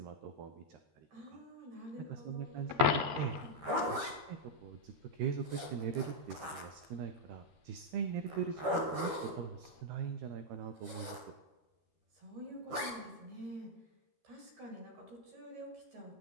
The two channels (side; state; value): left; late; 13 ms